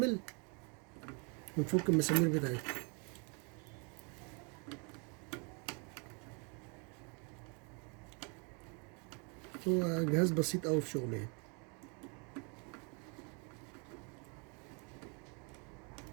ونفك المسامير بتاعتها. هو جهاز بسيط قوي في شغله يعني.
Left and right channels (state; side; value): quieter; left; 35.2 dB